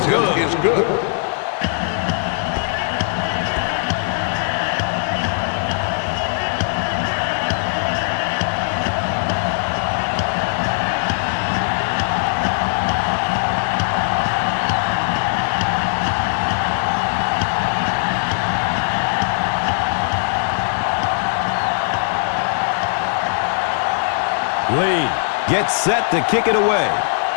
is good. Lead gets set to kick it away.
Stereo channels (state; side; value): silent; right; 64 dB below the other